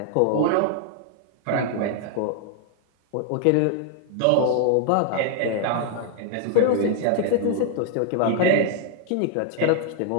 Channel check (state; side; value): different; both; correlation 0.00